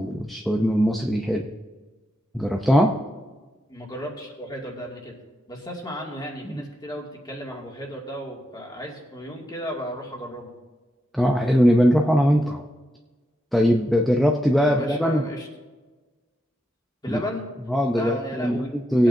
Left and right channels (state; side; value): normal; both; correlation 0.85